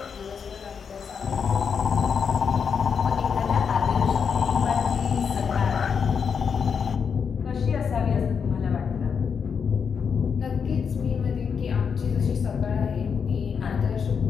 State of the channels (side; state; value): right; quieter; 6.5 dB